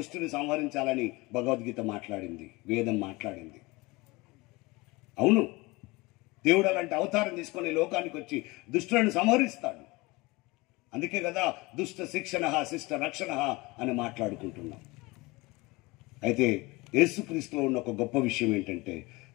సంహరించాలని భగవద్గీత మాట్లాడింది, వేదం మాట్లాడింది. అవును, దేవుడు అలాంటి అవతారం తీసుకొని లోకానికి వచ్చి దుష్టులను సంహరిస్తాడు. అందుకే కదా దుష్ట శిక్షణ శిష్ట రక్షణ అని మాట్లాడుకుంటున్నాం. అయితే యేసుక్రీస్తులో ఉన్న ఒక గొప్ప విషయం ఏంటంటే,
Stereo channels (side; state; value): right; quieter; 23.3 dB